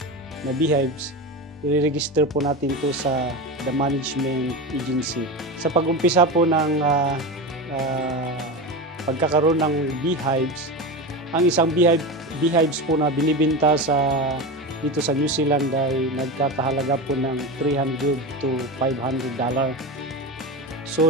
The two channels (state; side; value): normal; both; correlation 0.23